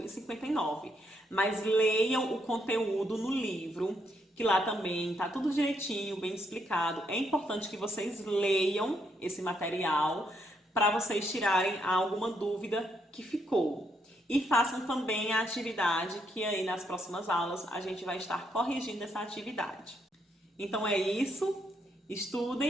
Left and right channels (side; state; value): both; normal; correlation 0.75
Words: e 59, mas leiam o conteúdo no livro, que lá também está tudo direitinho, bem explicado. É importante que vocês leiam esse material para vocês tirarem alguma dúvida que ficou. E façam também a atividade, que aí nas próximas aulas a gente vai estar corrigindo essa atividade. Então é isso,